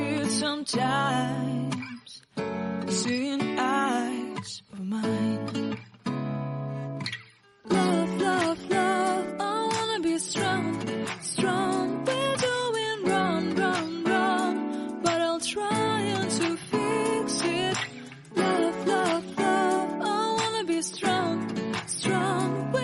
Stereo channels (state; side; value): identical; both; correlation 1.00